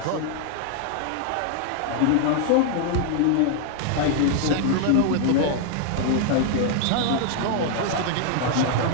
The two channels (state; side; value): different; both; correlation 0.00